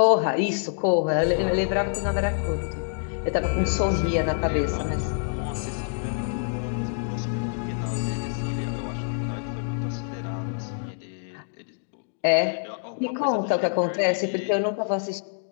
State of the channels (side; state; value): right; silent; digital silence